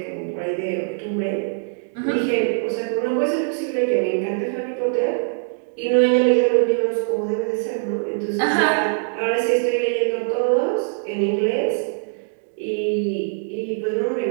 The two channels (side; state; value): left; silent; digital silence